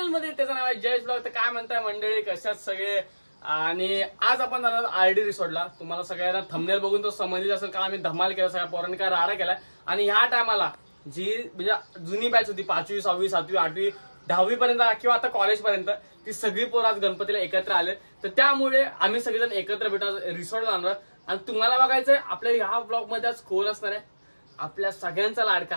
मध्ये. त्याचं नाव आहे जयेश ब्लॉग. तर काय म्हणताय मंडळी, कशात सगळे? आणि आज आपण जाणार आरडी रिसॉर्टला. तुम्हाला सगळ्यांना थंबनेल बघून तो समजली असेल का आम्ही धमाल केला, सगळ्या पोरांनी काय राडा केलाय. आणि ह्या टायमाला जी म्हणजे जुनी बॅच होती 5वी 6वी 7वी 8वी 10वी पर्यंत किंवा आता कॉलेज पर्यंत, ती सगळी पोरं आज गणपतीला एकत्र आले. तर त्यामुळे आम्ही सगळेजण एकत्र भेटून रिसॉर्टला जाणार. आणि तुम्हाला बघायचंय आपल्या ह्या ब्लॉग मध्ये आज कोण असणार आहे, आपल्या सगळ्यांचा लाडका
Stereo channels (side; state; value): both; inverted; correlation -1.00